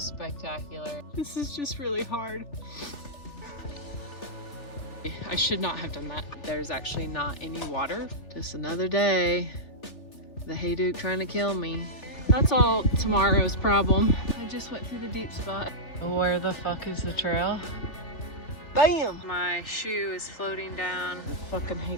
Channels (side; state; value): right; late; 3.4 ms